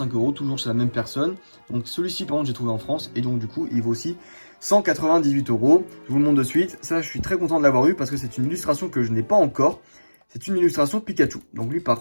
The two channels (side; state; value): both; inverted; correlation -1.00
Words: €, toujours chez la même personne. Donc celui-ci par contre j'ai trouvé en France, et donc du coup il vaut aussi 198 €. Je vous le montre de suite. Ça, je suis très content de l'avoir eu parce que c'est une illustration que je n'ai pas encore. C'est une illustration Pikachu. Donc lui, par